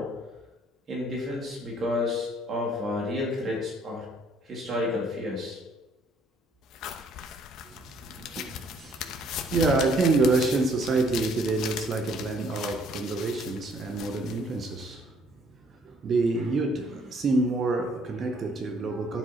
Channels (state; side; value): normal; both; correlation 0.63